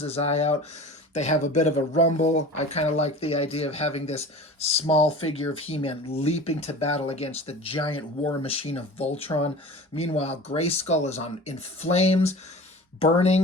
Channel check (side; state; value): both; normal; correlation 0.38